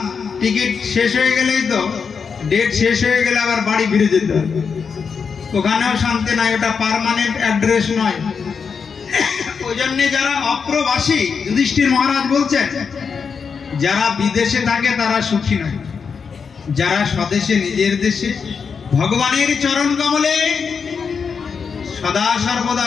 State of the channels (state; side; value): quieter; right; 5.9 dB